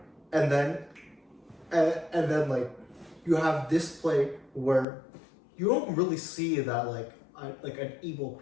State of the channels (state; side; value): drops out; right; at 4.9 s